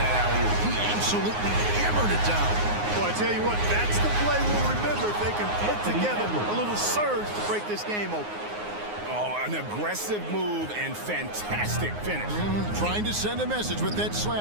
alley-oop? He absolutely hammered it down. Boy, I tell you what, that's the play we'll remember if they can put together a little surge to break this game open. Oh, an aggressive move and fantastic finish. Trying to send a message with that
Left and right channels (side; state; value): left; late; 9.6 ms